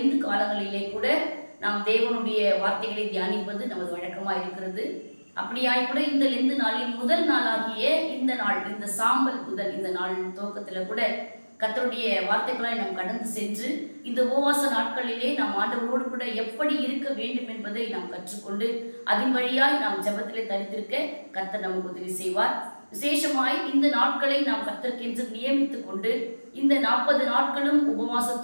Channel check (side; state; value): both; inverted; correlation -1.00